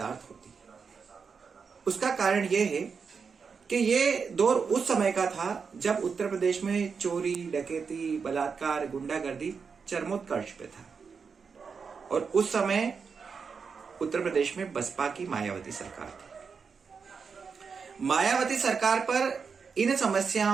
होती है। उसका कारण यह है कि ये दौर उस समय का था जब उत्तर प्रदेश में चोरी, डकैती, बलात्कार, गुंडागर्दी चरमोत्कर्ष पे था और उस समय उत्तर प्रदेश में बसपा की मायावती सरकार थी। मायावती सरकार पर इन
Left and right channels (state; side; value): quieter; left; 5.6 dB